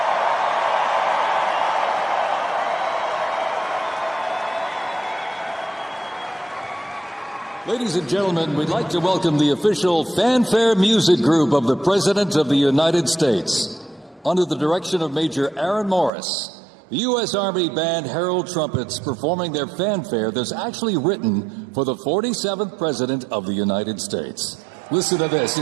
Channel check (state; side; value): drops out; left; at 16.1 s